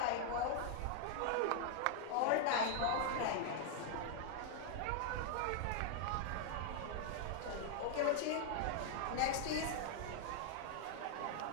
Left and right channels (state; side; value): different; both; correlation 0.00